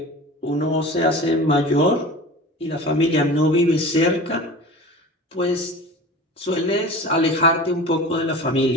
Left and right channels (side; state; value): both; normal; correlation 0.36